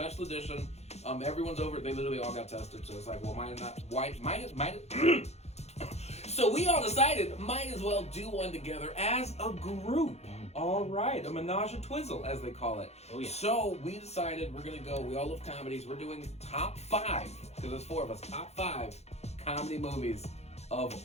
edition. Everyone's over, they literally all got tested, so it's like, well, So we all decided, might as well do one together as a group. All right, a menage a twizzle, as they call it. Oh, yeah. So we decided we're going to go, we all love comedies, we're doing top 5, because there's 4 of us, top 5 comedy movies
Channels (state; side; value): late; right; 0.31 ms